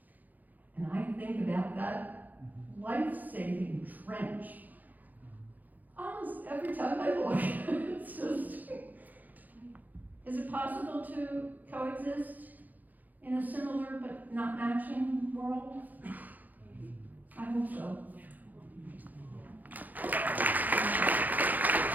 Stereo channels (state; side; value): late; left; 0.083 ms